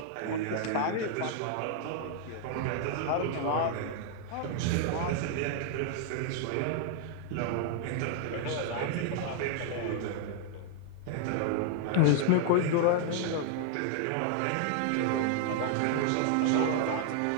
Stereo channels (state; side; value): different; both; correlation 0.00